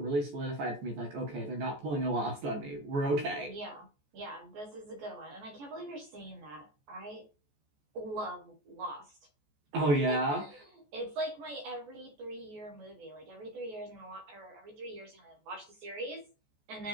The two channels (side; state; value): left; late; 14 ms